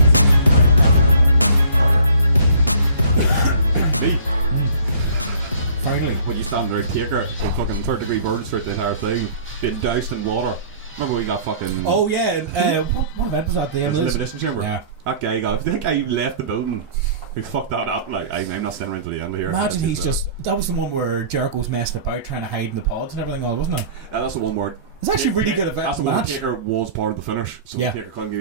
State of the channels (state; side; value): inverted; both; correlation -0.49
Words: Finally, when you stand Red Acre, so fucking 3rd-degree burns throughout the entire thing, been doused in water. Remember we got fucking... Oh yeah, what event was that? The elimination chamber. Yeah. That guy left the building. He fucked that up. Like, I'm not standing around till the end of here. Imagine he's just... That was the one where Jericho's messed about trying to hide in the pods and everything all, wasn't it? Yeah, that's the one where... It's actually really good event. That's the one Taker was part of the finish. So yeah. Taker couldn't